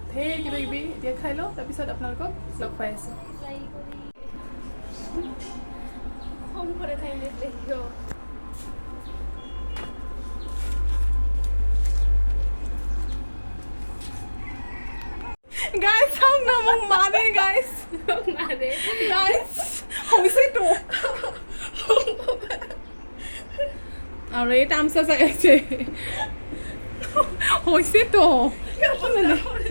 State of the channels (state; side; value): inverted; both; correlation -1.00